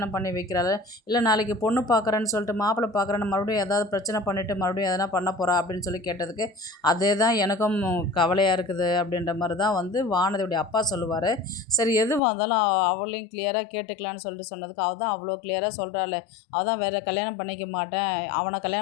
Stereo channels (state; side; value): drops out; right; at 12.2 s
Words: பண்ணி வைக்கிறாள், இல்லை நாளைக்கு பொண்ணு பார்க்குறேன்னு சொல்லிட்டு மாப்பிள்ளை பார்க்குறேன்னு மறுபடியும் ஏதாவது பிரச்சனை பண்ணிவிட்டு மறுபடியும் எதனா பண்ண போகிறா அப்படின்னு சொல்லி கேட்டதுக்கு, அதே தான் எனக்கும் கவலையாக இருக்குது அப்படின்ற மாதிரி தான் வந்து வானதியுடைய அப்பா சொல்லுவார். சரி எதுவாக இருந்தாலும் அவளையும் கிளியராக கேட்டுக்கலான்னு சொல்லிட்டு சொன்னதுக்கு, அவள் தான் அவ்வளோ கிளியராக சொல்கிறாள், அவள் தான் வேறு கல்யாணம் பண்ணிக்க மாட்டேன், அவனை